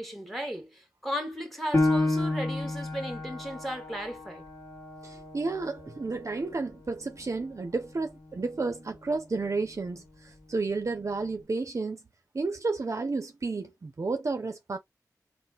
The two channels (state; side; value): normal; both; correlation 0.87